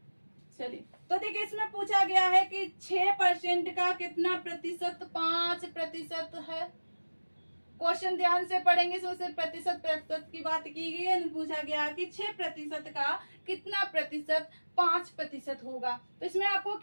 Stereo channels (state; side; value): inverted; both; correlation -1.00